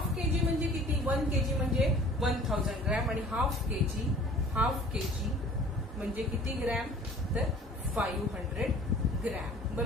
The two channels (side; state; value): both; normal; correlation 0.49